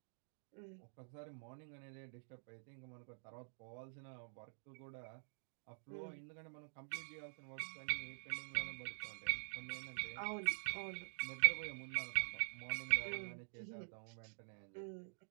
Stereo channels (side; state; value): left; silent; digital silence